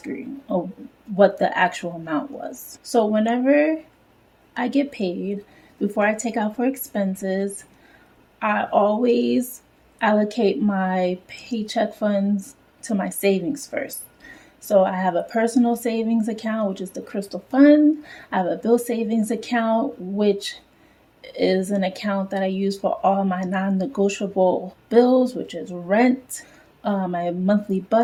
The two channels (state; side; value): identical; both; correlation 1.00